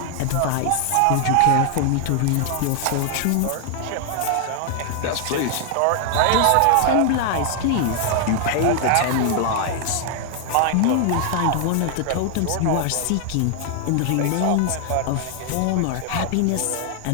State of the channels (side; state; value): both; different; correlation 0.00